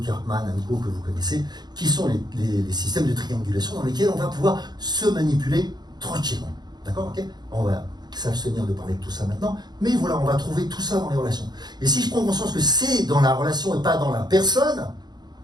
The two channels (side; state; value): left; late; 0.20 ms